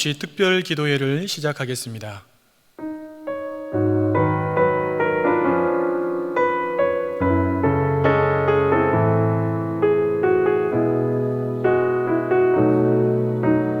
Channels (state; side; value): identical; both; correlation 1.00